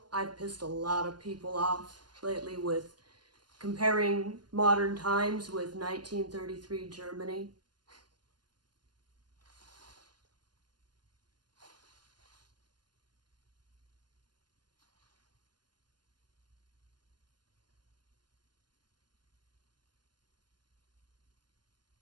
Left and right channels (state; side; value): late; left; 0.71 ms